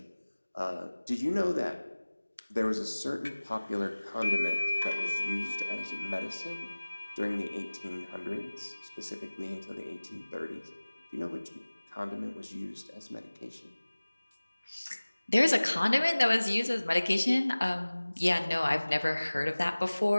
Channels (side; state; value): both; inverted; correlation -1.00